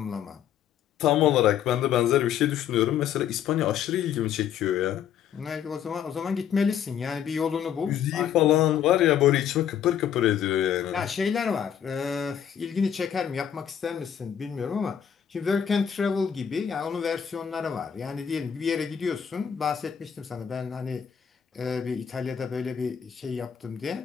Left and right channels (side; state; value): right; quieter; 8.9 dB